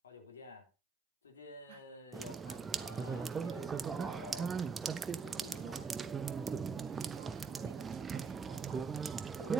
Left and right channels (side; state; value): left; quieter; 5.2 dB